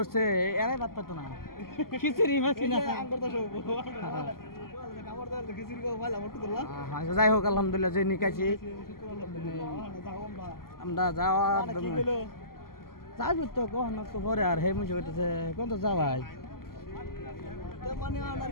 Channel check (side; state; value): right; late; 0.92 ms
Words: এরাই বাদ পাতো না খিচুড়ি মাছি না আঙ্গুর তো সব খাবার দাবার খিচুড়ি কো ভালো মত করলা যাই হোক আলহামদুলিল্লাহ যে নিকাছি আমরা যাওয়া কি হলো যাইব তো কখন তো পরে আর হে মুছে কইতেছে কোন তো যাবাই তো মানে আর